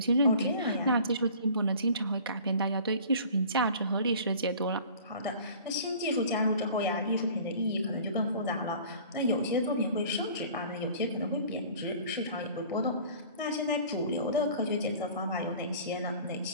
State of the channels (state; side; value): inverted; both; correlation -0.46